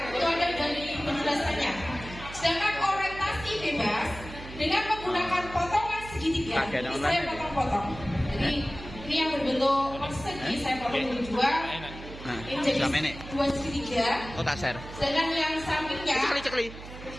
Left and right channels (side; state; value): right; noise; hum, 13 dB below the sound